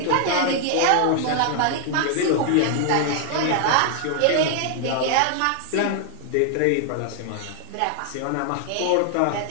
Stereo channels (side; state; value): both; different; correlation 0.00